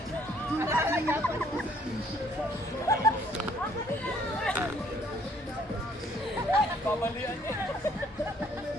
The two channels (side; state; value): both; normal; correlation 0.63